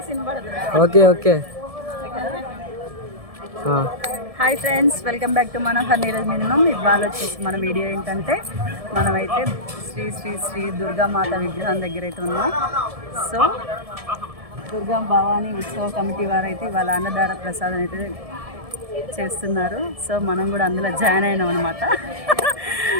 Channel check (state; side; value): late; left; 1.7 ms